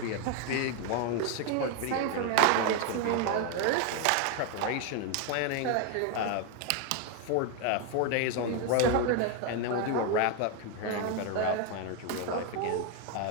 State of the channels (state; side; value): different; both; correlation 0.01